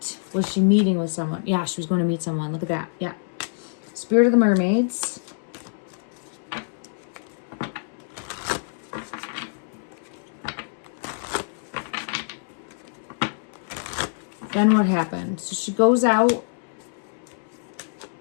was she meeting with someone? Yeah, she was going to meet someone. Look at that. Yeah. Spirit of the Mermaids. Then what happened? So she goes out,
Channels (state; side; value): silent; right; 61 dB below the other